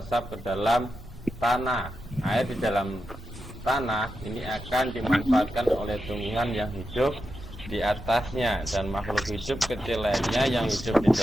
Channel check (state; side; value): normal; both; correlation 0.89